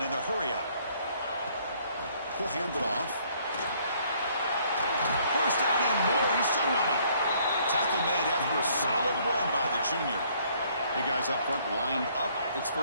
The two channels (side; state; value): both; inverted; correlation -0.63